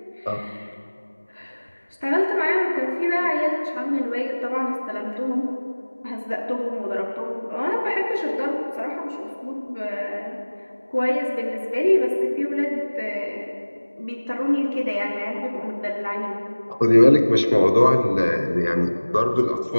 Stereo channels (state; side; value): inverted; both; correlation -1.00